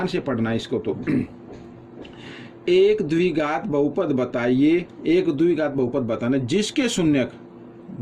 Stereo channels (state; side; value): identical; both; correlation 1.00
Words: से पढ़ना इसको। तो एक द्विघात बहुपद बताइए, एक द्विघात बहुपद बताना जिसके शून्यक,